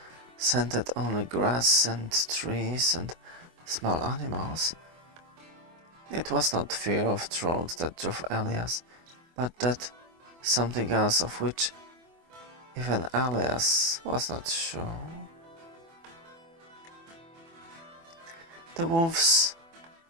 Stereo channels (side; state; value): left; late; 24 ms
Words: scented only grass and trees and small animals. It was not fear of trolls that drove Elias, but that something else of which even Elias was not sure. The wolves